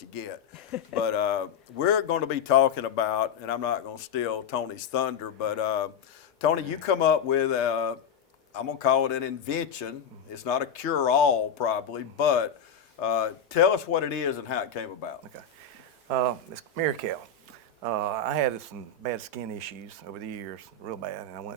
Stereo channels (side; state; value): right; quieter; 5.8 dB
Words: get. But we're going to be talking about, and I'm not going to steal Tony's thunder, but Tony, you come up with, I'm going to call it an invention. It's not a cure-all probably, but tell us what it is and how it came about. Okay. It's Mirakel. I had some bad skin issues over the years, real bad, and I